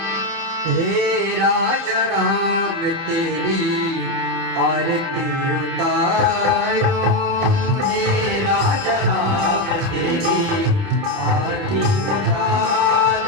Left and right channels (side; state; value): left; late; 29 ms